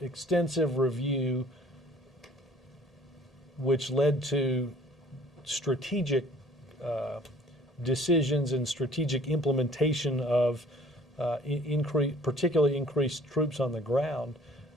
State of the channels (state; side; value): normal; both; correlation 0.55